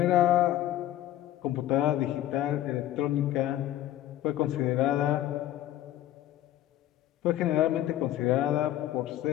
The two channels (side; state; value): right; quieter; 13.3 dB